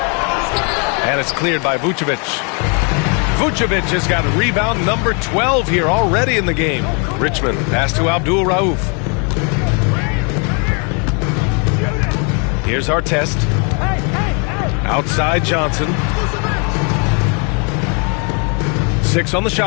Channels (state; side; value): quieter; right; 36.2 dB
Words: And it's cleared by Vucevic. Vucevic has got rebound number 12 here already in the game. Richmond pass to Abdul Rauf. Here's Artest. Outside Johnson. 6 on the